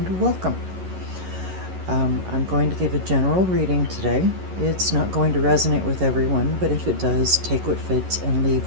welcome. I'm going to give a general reading today. It's not going to resonate with everyone, but if it does, take what fits and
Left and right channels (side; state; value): left; late; 11 ms